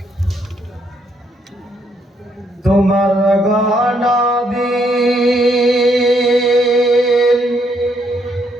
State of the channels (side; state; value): both; normal; correlation 0.73